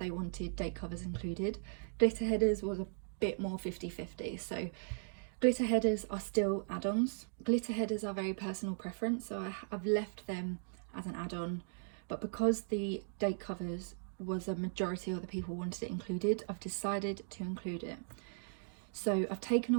wanted date covers included. Glitter headers was a bit more 50-50. So glitter headers are still add-ons. Glitter headers are very personal preference, so I've left them as an add-on but because the date covers was a majority of the people wanted it included, I've decided to include it. So I've taken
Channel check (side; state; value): left; silent; digital silence